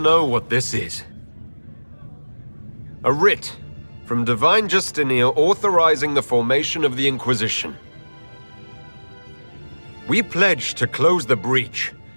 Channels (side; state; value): both; inverted; correlation -1.00